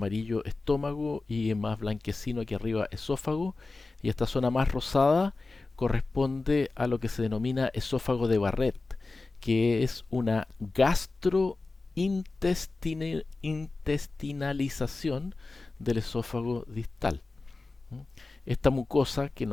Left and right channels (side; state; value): right; quieter; 3.5 dB